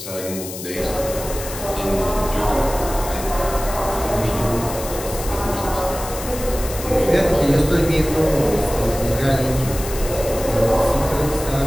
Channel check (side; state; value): left; noise; hiss, 10 dB below the sound